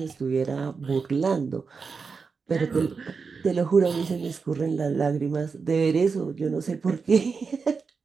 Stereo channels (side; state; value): left; quieter; 5.1 dB